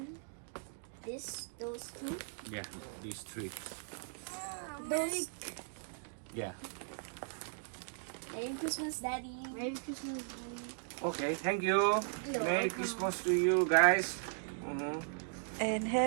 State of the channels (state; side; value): silent; left; digital silence